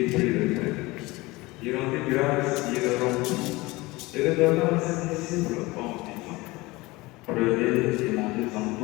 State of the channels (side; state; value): right; quieter; 21.7 dB